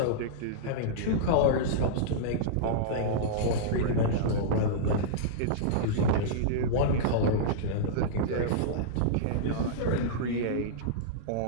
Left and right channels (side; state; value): both; different; correlation -0.03